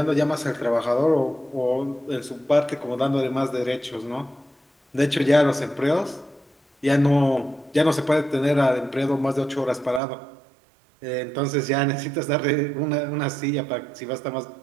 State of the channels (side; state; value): left; drops out; at 10.0 s